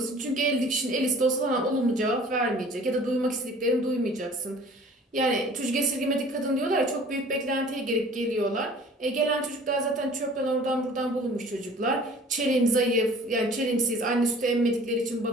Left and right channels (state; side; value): normal; both; correlation 0.48